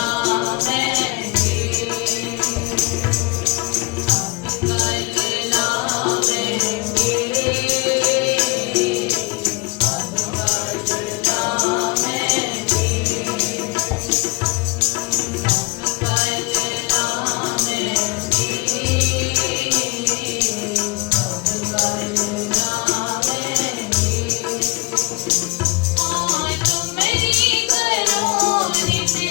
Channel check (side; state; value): right; quieter; 26.4 dB